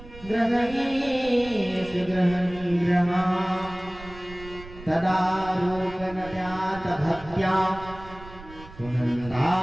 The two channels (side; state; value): right; noise; rumble, 17 dB below the sound